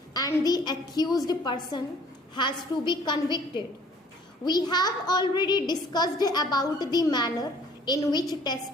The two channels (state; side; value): normal; both; correlation 0.55